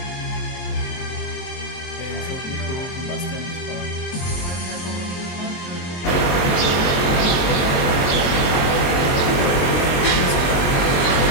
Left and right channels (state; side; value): late; right; 22 ms